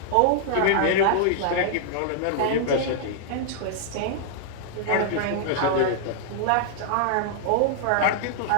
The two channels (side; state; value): both; different; correlation -0.01